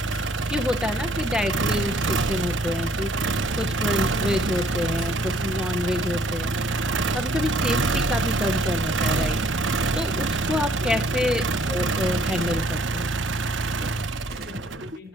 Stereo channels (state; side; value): normal; both; correlation 0.61